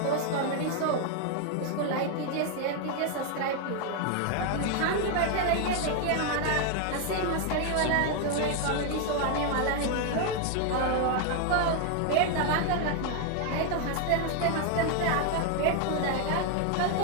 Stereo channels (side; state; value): both; different; correlation 0.01